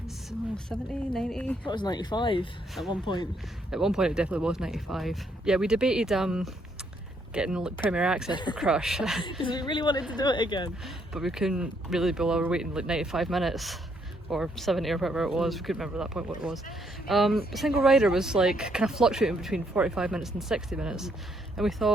90? That was 95 at one point. At one point it definitely was 95. Yeah, we debated getting Premier Access for Crush. Because we really wanted to do it again. But we couldn't really be over waiting like 95 minutes. Or 70 or whatever it was, we couldn't remember at that point what it was. Single rider was like kind of fluctuating between 45 minutes and 60 minutes. And we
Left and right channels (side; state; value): both; normal; correlation 0.72